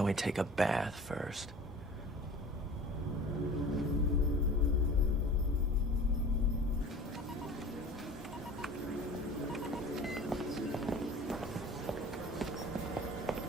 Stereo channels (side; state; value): both; normal; correlation 0.42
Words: we take a bath first?